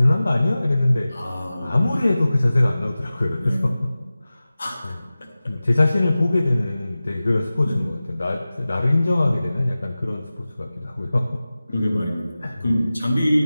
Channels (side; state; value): both; inverted; correlation -0.96